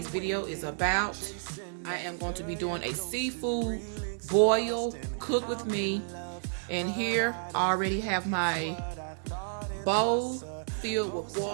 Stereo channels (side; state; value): left; silent; 57 dB below the other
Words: video is about, I am going to be doing a seafood boil cook with me. And here I already have my bowl filled with